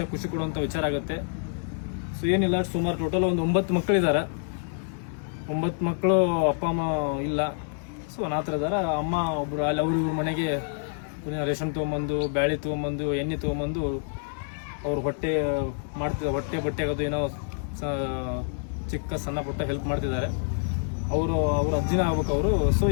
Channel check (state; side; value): silent; right; 60 dB below the other